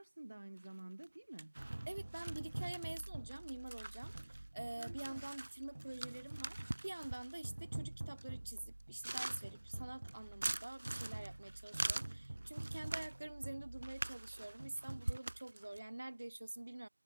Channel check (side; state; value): both; inverted; correlation -1.00